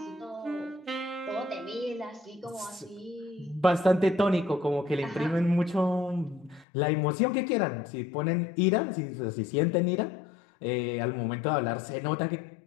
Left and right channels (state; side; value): drops out; right; at 6.7 s